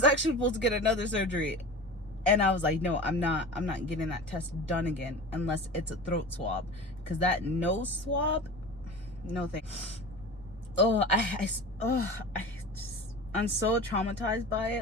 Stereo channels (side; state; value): both; normal; correlation 0.33